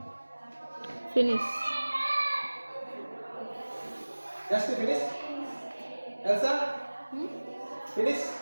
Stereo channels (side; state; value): both; inverted; correlation -1.00